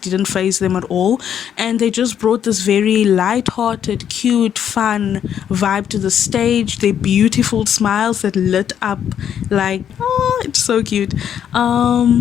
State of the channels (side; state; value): right; quieter; 9.1 dB